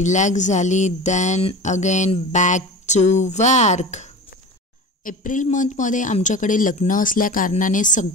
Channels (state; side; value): normal; both; correlation 0.33